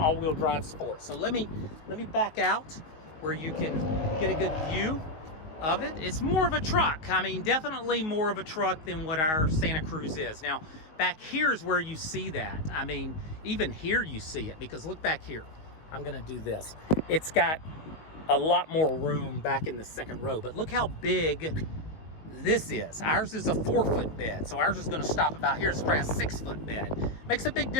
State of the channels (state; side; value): late; right; 19 ms